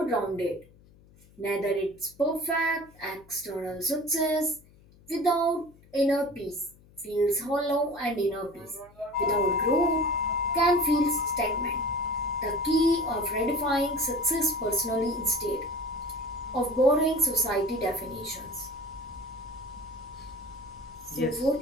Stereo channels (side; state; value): left; noise; hum, 26 dB below the sound